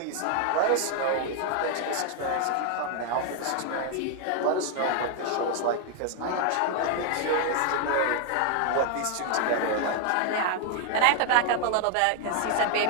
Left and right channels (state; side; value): different; both; correlation 0.00